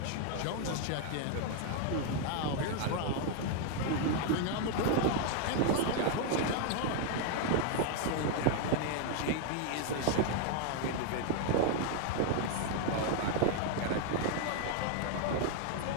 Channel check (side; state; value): both; different; correlation 0.00